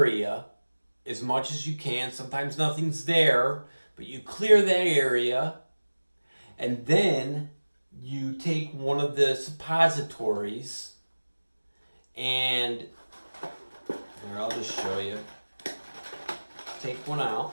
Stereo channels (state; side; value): inverted; both; correlation -1.00